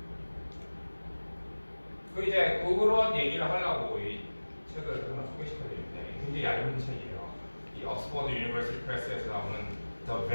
이제 그런 얘기를 하려고 이 책을 하나 소개시켜드리는데 굉장히 얇은 책이에요. 이 옥스퍼드 유니버시티 프레스에서 나오는 The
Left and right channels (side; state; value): both; inverted; correlation -1.00